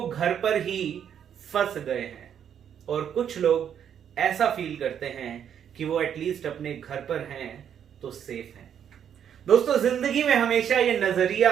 घर पर ही फंस गए हैं, और कुछ लोग ऐसा फील करते हैं कि वो एटलीस्ट अपने घर पर हैं तो सेफ हैं। दोस्तों, जिंदगी में हमेशा ये नजरिया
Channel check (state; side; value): quieter; left; 8.8 dB